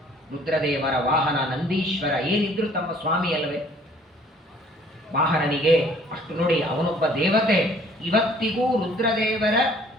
ರುದ್ರದೇವರ ವಾಹನ ನಂದೀಶ್ವರ, ಏನಿದ್ರು ತಮ್ಮ ಸ್ವಾಮಿ ಅಲ್ಲವೇ? ವಾಹನನಿಗೆ ಅಷ್ಟು ನೋಡಿ, ಅವನೊಬ್ಬ ದೇವತೆ. ಇವತ್ತಿಗೂ ರುದ್ರದೇವರ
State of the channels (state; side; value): normal; both; correlation 0.56